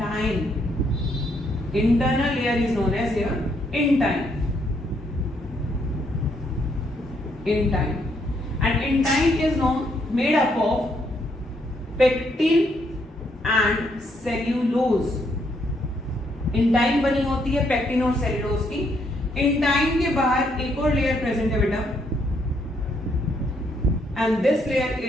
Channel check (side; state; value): both; normal; correlation 0.73